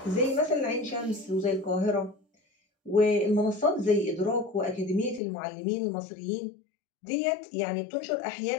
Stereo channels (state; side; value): drops out; right; at 5.2 s